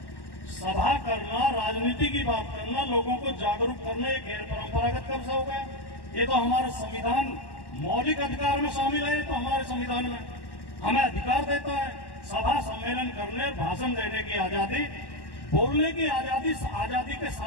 सभा करना, राजनीति की बात करना, लोगों को जागरूक करना, ये गैर परंपरागत कब से हो गया? ये तो हमारा संविधान मौलिक अधिकार में शामिल है। तो हमारे संविधान में हमें अधिकार देता है सभा सम्मेलन करने, भाषण देने की आजादी, बोलने की आजादी। आजादी के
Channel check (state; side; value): late; right; 1.1 ms